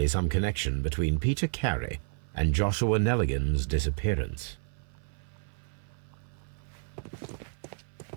some connection between Peter Carey and Joshua Nelligan's disappearance.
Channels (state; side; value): silent; left; 57 dB below the other